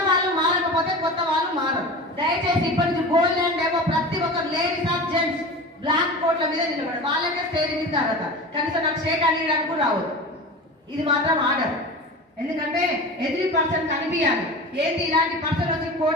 వాళ్ళు మారకపోతే కొత్త వాళ్ళు మారరు. దయచేసి ఇప్పటి నుంచి గోల్డ్ ల్యాండ్ ఏమో ప్రతి ఒక్కరు లేడీస్ ఆర్ జెంట్స్ బ్లాక్ బోర్డుల మీద నిలబడి వాళ్ళకే స్టేజ్ ఇస్తారట, కనీసం నాకు షేక్ అనియడానికి కూడా రావద్దు. ఇది మాత్రం ఆర్డర్. ఎందుకంటే ఎదురు పర్సన్ కనిపించాలి. ఏంటి ఇలాంటి పర్సన్ వచ్చి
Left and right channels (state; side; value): normal; both; correlation 0.32